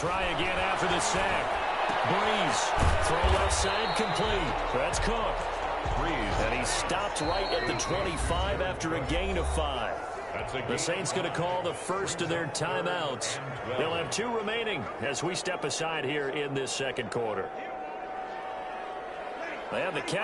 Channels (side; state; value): both; identical; correlation 1.00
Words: again after the sack. Breeze. Throw left side complete. That's Cook. Breeze. And he stopped right at the 25 after a gain of 5. The Saints going to call the first of their timeouts. They'll have 2 remaining as we step aside here in this second quarter. They had the